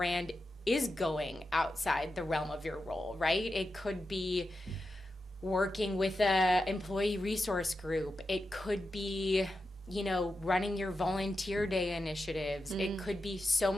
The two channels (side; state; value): both; normal; correlation 0.89